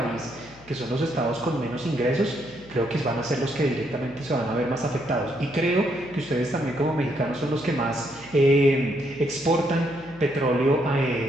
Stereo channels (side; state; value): left; noise; hum, 23 dB below the sound